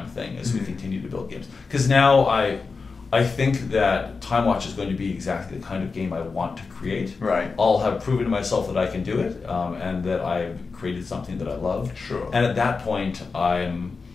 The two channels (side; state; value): right; quieter; 4.5 dB